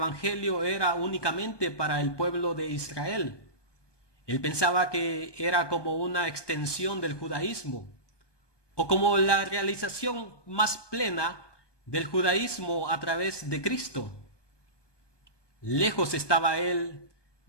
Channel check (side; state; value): right; late; 1.2 ms